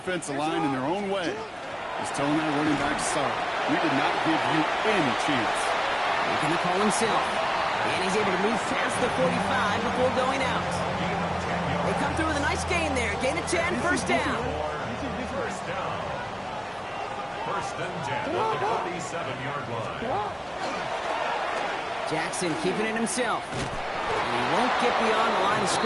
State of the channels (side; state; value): both; identical; correlation 1.00